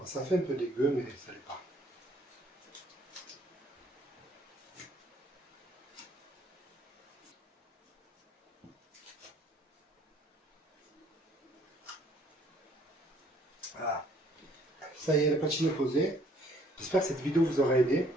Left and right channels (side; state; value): both; normal; correlation 0.61